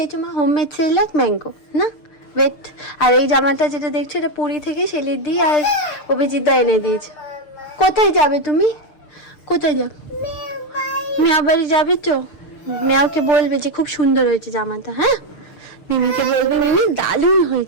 মা? হোমমেড সেরেল্যাক ম্যাঙ্গো না ওয়েট। আর এই জামাটা যেটা দেখছো এটা পুরী থেকে সেলিদি আর অভিজিৎদা এনে দিয়েছে। কোথায় যাবে তুমি, কোথায় যাবে? মিয়া বাড়ি যাবে তো? মিয়াকে বলবে যে খুব সুন্দর হয়েছে জামাটা। হ্যাঁ মিমিকে বলবে মিমি দারুণ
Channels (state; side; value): late; right; 6.7 ms